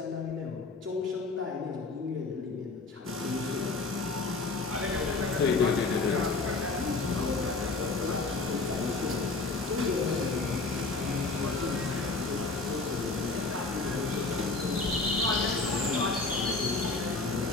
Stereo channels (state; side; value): quieter; right; 3.7 dB